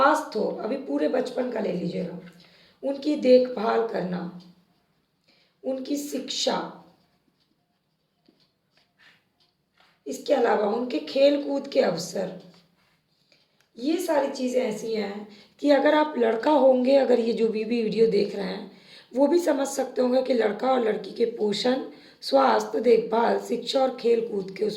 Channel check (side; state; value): both; identical; correlation 1.00